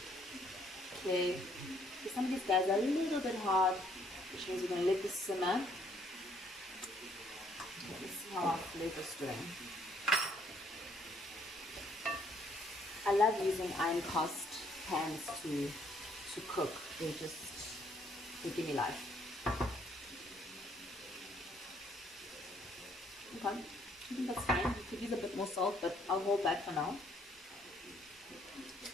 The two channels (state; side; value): normal; both; correlation 0.67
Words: Okay, so some of these guys are a little bit hard, which means we're going to let this simmer. Let's see how our flavor's doing. I love using iron cast pans to cook. They give me life. Okay, I think that's fine. You could use a bit more salt, but I'll hold back for now.